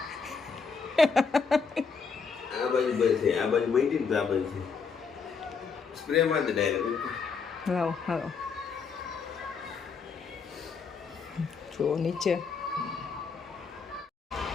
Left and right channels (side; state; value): right; quieter; 5.4 dB